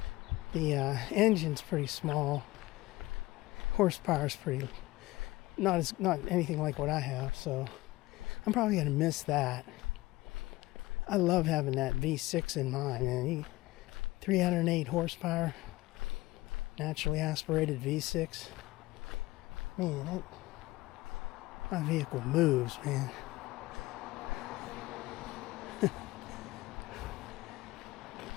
engine's pretty small. Horsepower's pretty not anything like what I have, so I'm probably gonna miss that. I love having that V6 in mine, man. 308 horsepower, naturally aspirated V6. Man, my vehicle moves, man.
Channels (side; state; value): right; quieter; 19.0 dB